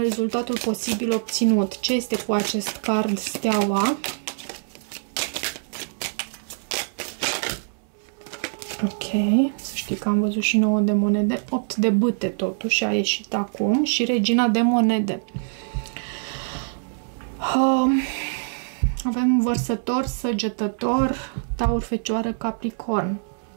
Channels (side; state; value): left; silent; 62 dB below the other